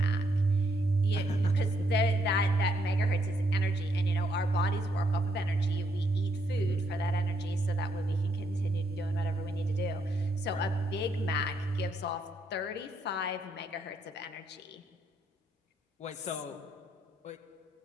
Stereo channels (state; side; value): normal; both; correlation 0.74